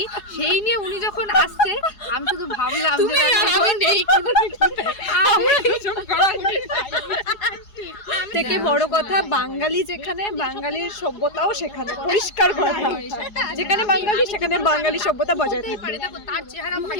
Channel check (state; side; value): late; right; 4.8 ms